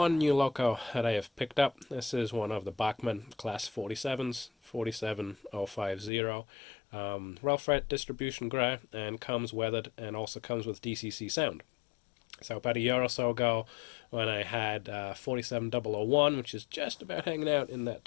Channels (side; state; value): right; drops out; at 6.1 s